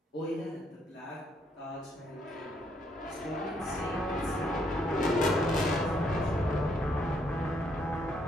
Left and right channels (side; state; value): both; normal; correlation 0.72